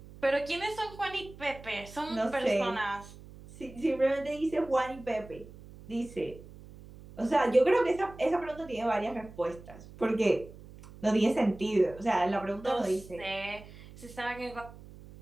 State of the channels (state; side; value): noise; right; hum, 18 dB below the sound